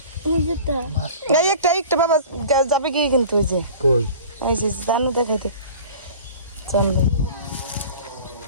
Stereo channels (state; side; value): inverted; both; correlation -0.41